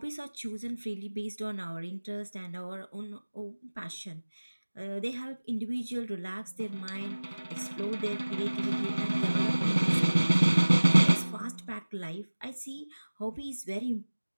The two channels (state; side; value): inverted; both; correlation -1.00